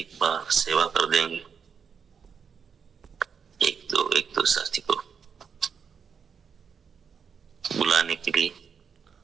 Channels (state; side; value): quieter; left; 6.6 dB